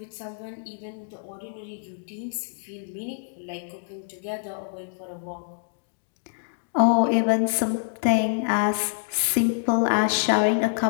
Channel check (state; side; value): silent; right; digital silence